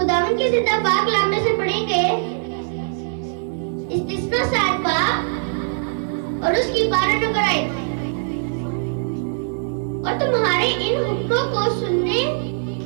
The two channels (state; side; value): silent; left; digital silence